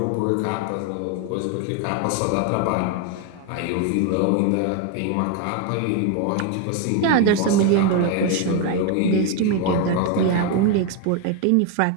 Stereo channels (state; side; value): different; both; correlation 0.01